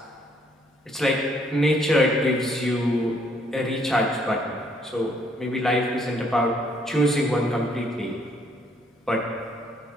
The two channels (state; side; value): normal; both; correlation 0.67